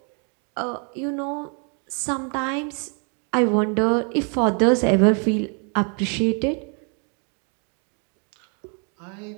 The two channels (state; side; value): quieter; left; 38.9 dB